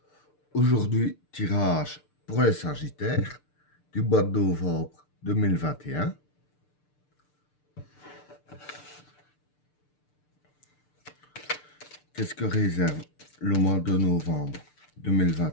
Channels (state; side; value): late; right; 6.7 ms